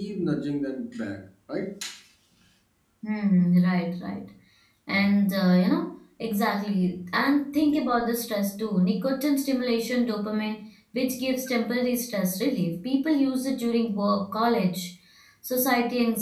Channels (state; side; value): identical; both; correlation 1.00